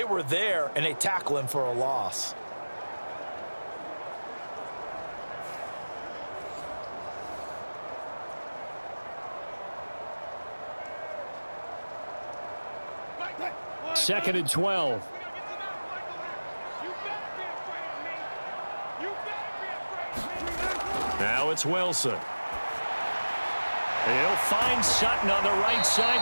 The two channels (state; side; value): inverted; both; correlation -1.00